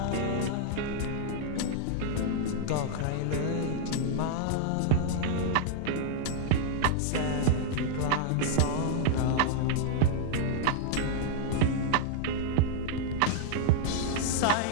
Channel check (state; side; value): different; both; correlation -0.01